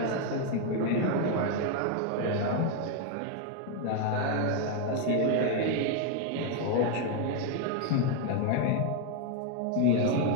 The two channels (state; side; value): different; both; correlation 0.01